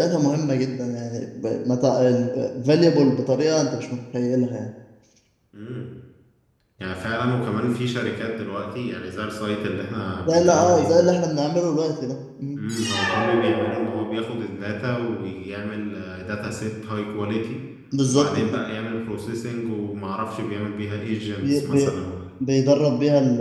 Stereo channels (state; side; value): identical; both; correlation 1.00